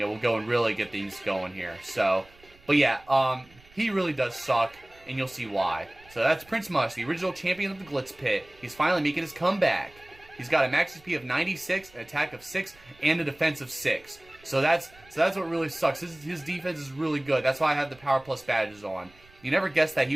go and really get things going here. So, but yeah, he really does suck, and you'll see why. So that's Prince Mush, the original champion of the Glitz Pit. He's finally making his comeback. He's got a max HP of 96, an attack of 6, and a defense of 6. So that's what really sucks. His defense is really good. That's why I have the Power Plus badges on. You never guessed that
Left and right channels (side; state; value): right; noise; rumble, 27 dB below the sound